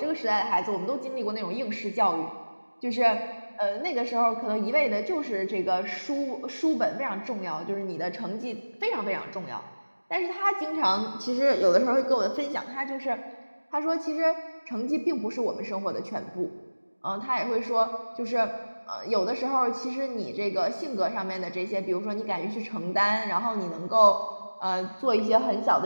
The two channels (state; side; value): inverted; both; correlation -1.00